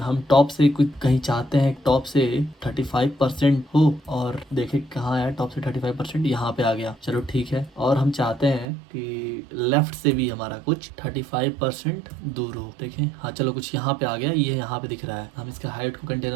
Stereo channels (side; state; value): left; drops out; at 8.7 s